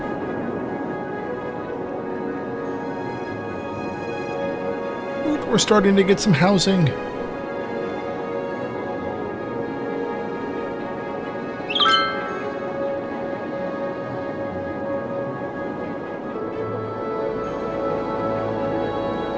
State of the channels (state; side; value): identical; both; correlation 1.00